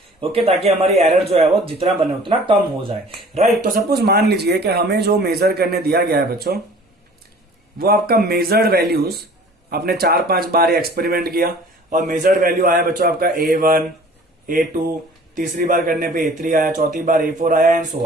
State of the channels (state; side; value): normal; both; correlation 0.48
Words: ओके, ताकि हमारी एरर जो है वो जितना बने उतना कम हो जाए। राइट, तो सपोज मान लीजिए कि हमें जो मेजर करने दिया गया है बच्चों, वो आपका मेजर्ड वैल्यूज आपने 4-5 बार एक्सपेरिमेंट किया और मेजर्ड वैल्यू आया बच्चों आपका A1, A2, तीसरी बार करने पे A3 आया, चौथी बार A4 आया एंड सो